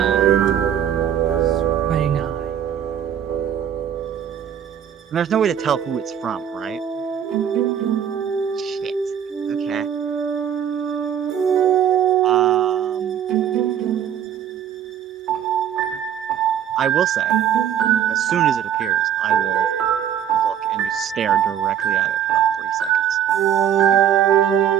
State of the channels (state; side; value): quieter; left; 9.5 dB